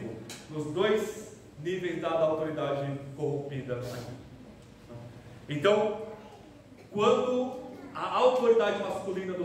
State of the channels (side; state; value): both; identical; correlation 1.00